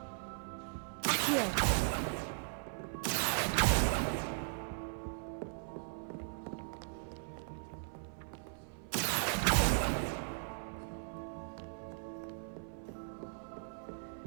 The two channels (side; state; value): left; silent; 52 dB below the other